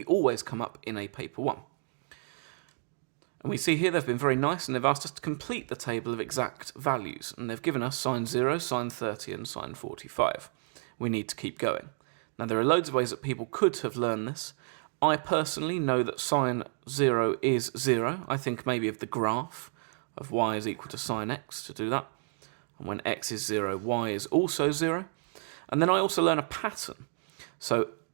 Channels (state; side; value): silent; left; 57 dB below the other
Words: always come up in a paper 1. And we see here they've been very nice and they've asked us to complete the table of exact values. And they've given us sine 0, sine 30 and sine 45. We need to keep going. Now there are loads of ways that people could have learned this. I personally know that sine 0 is 0. I think maybe of the graph of y is equal to sine x to do that. And when x is 0, y is also 0. And then I also learn a pattern. So